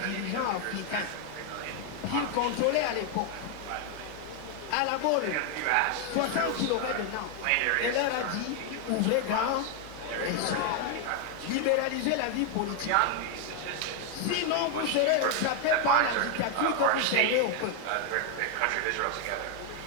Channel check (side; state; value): both; different; correlation 0.01